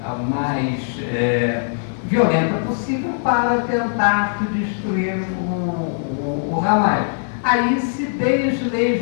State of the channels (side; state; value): right; silent; 65 dB below the other